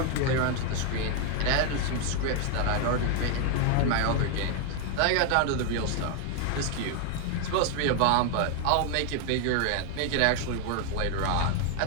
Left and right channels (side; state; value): both; different; correlation 0.00